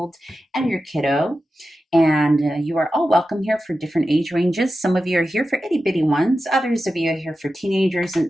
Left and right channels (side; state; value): both; normal; correlation 0.92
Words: and your kiddo. And you are all welcome here for different age ranges. Some of you are here for itty-bitty ones. Others of you are here for teenagers, and